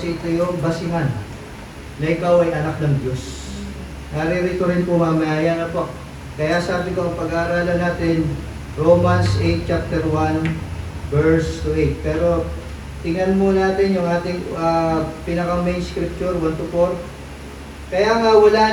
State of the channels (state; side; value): identical; both; correlation 1.00